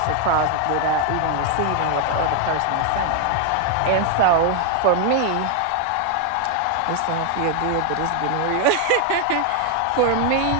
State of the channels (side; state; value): both; different; correlation 0.01